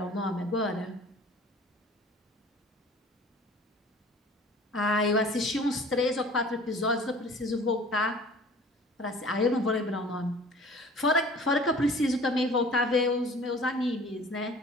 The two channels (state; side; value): normal; both; correlation 0.47